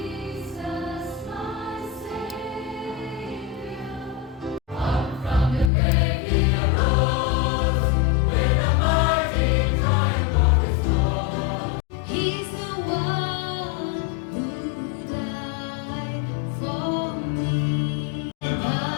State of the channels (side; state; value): right; drops out; at 5.7 s